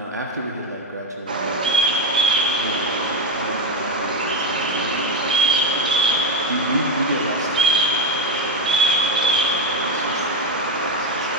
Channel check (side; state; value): both; normal; correlation 0.10